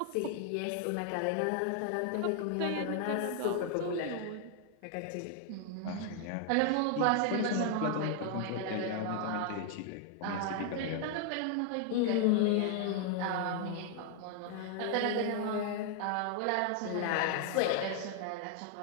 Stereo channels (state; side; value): different; both; correlation 0.00